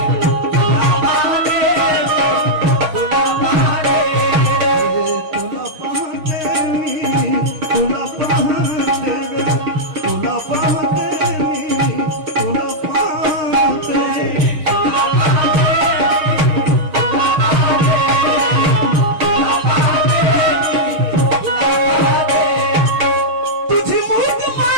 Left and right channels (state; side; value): late; left; 6.5 ms